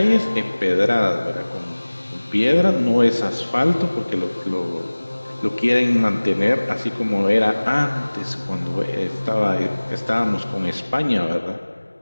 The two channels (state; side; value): inverted; both; correlation -1.00